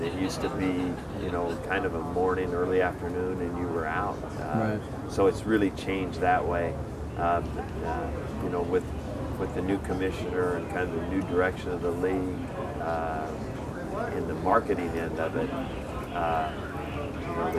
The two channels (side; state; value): both; identical; correlation 1.00